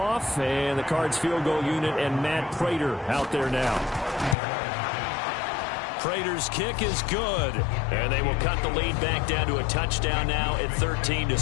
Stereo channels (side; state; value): right; drops out; at 4.4 s